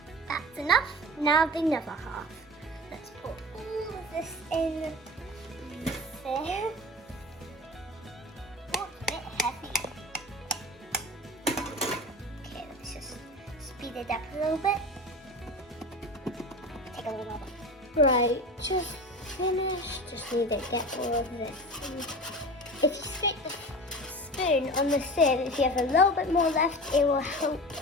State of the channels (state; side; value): normal; both; correlation 0.32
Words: That's enough, now the other half. Let's put all of this in there. Oh, it's a bit heavy. Okay, let's just speed it up a little bit. Take a little more. Right, just finished. Just need to get all of this. If you stick the spoon on the sieve, if you have a little bit more left, it will help